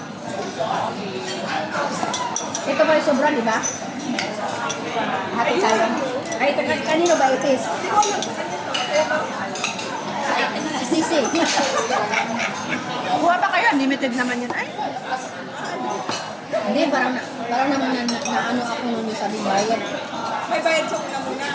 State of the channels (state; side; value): identical; both; correlation 1.00